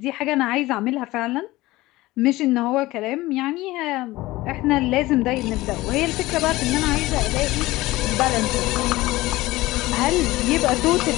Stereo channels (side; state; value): right; quieter; 18.7 dB